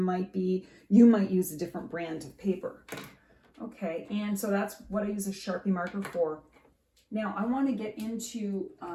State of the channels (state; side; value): identical; both; correlation 1.00